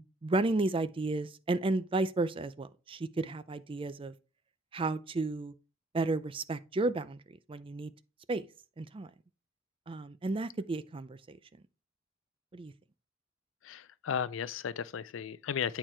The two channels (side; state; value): both; normal; correlation 0.53